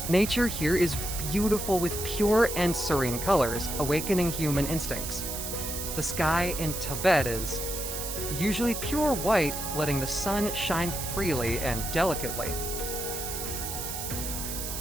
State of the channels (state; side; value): noise; right; hiss, 5 dB below the sound